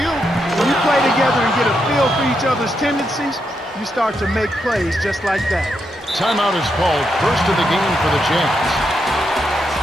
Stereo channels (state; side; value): normal; both; correlation 0.82